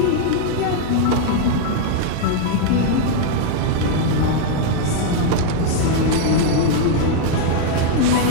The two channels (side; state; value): both; different; correlation 0.00